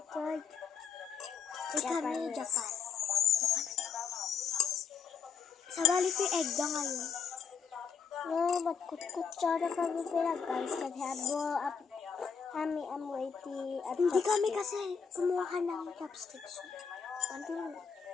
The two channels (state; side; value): quieter; right; 6.4 dB